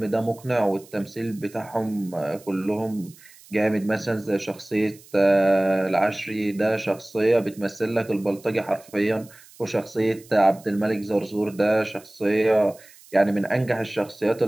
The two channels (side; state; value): right; noise; hiss, 24 dB below the sound